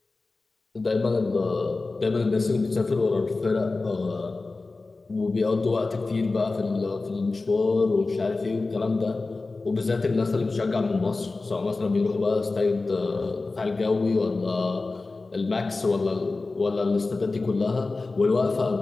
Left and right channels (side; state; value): right; quieter; 3.6 dB